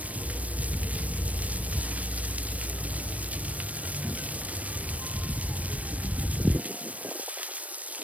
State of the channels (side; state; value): left; late; 0.068 ms